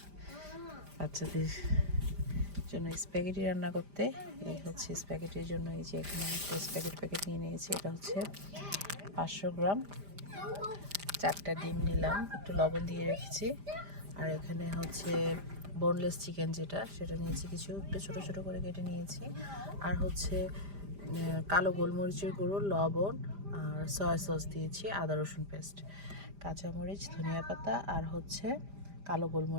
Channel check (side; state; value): left; late; 5.0 ms